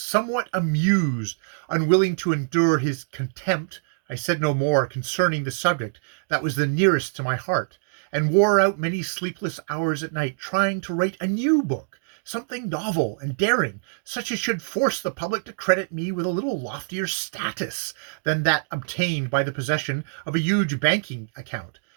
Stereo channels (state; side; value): silent; left; digital silence